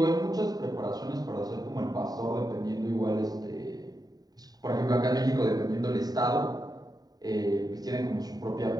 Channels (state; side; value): late; left; 0.18 ms